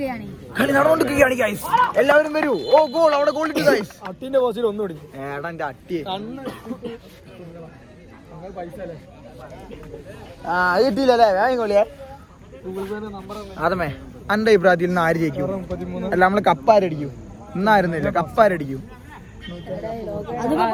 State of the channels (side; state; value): both; identical; correlation 1.00